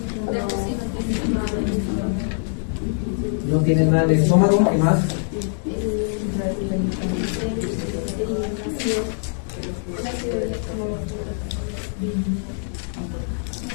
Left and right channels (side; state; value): right; silent; digital silence